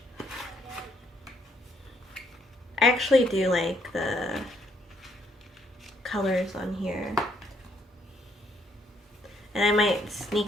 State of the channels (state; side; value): normal; both; correlation 0.70